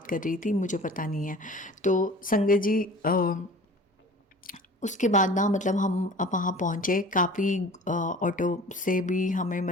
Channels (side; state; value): both; normal; correlation 0.43